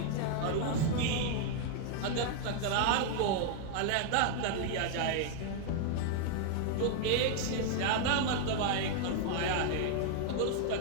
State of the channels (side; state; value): both; different; correlation 0.00